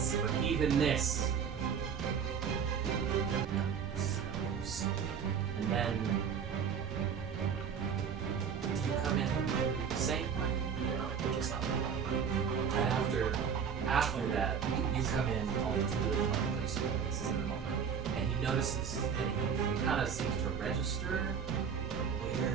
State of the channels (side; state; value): left; quieter; 6.9 dB